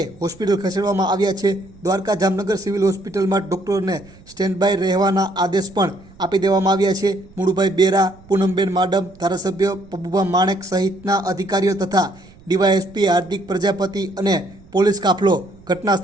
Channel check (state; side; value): noise; right; rumble, 24 dB below the sound